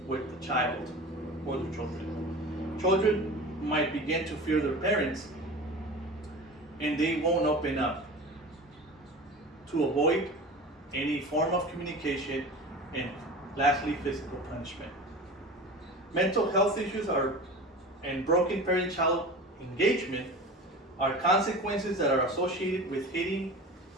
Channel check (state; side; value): normal; both; correlation 0.34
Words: with the child or the children. Children might begin to fear their parents and they won't open up to avoid any form of communication, and lastly, physical punishment. Mental health issues and broken parent-child engagement are consequences that are associated with hitting